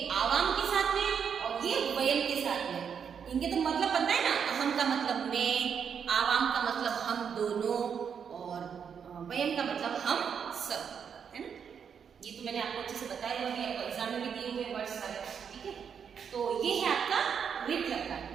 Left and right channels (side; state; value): left; quieter; 7.2 dB